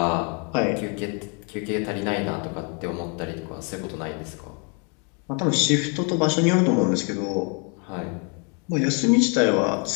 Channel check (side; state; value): right; quieter; 36.3 dB